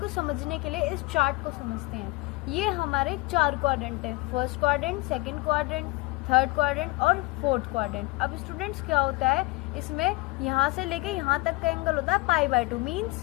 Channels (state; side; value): quieter; right; 23.9 dB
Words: समझने के लिए इस चार्ट को समझते हैं। ये हमारे 4 क्वाड्रेंट है, first quadrant, second quadrant, third quadrant और फोर्थ क्वाड्रेंट। अब स्टूडेंट्स क्या होता है, इसमें यहाँ से लेके यहाँ तक का एंगल होता है π/2